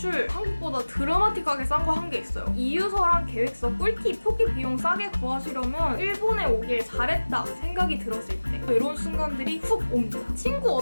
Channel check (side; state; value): both; inverted; correlation -1.00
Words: 한국보다 드라마틱하게 싼 거 한 게 있어요. 이유서랑 계획서, 꿀팁, 표기 비용 싸게 구하시려면 일본에 오길 잘했다 생각이 들었을 때 이런 순간들이 훅 옵니다. 친구